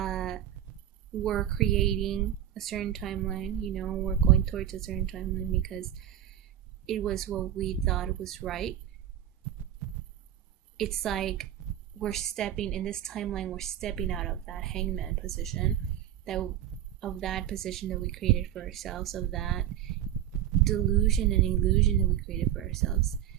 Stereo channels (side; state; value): left; quieter; 11.2 dB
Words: were creating a certain timeline, we're going towards a certain timeline because it was what we thought was right. It's like we're stepping in this timeline, we're stepping out of that hangman position, that position that we created for ourselves, of that delusion and illusion that we created for ourselves,